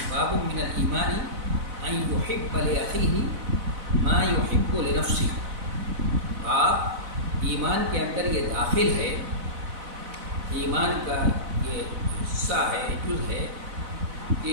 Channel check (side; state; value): left; late; 4.0 ms